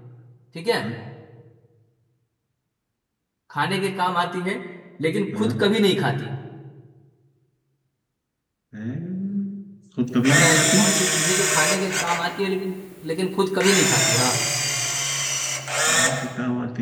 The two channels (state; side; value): identical; both; correlation 1.00